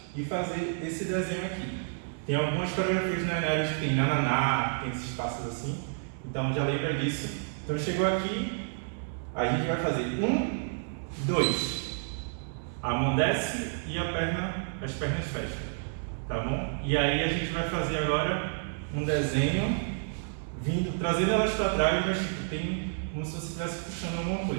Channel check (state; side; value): silent; left; digital silence